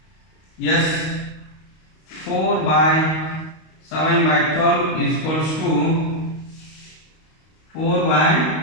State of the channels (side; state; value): right; late; 32 ms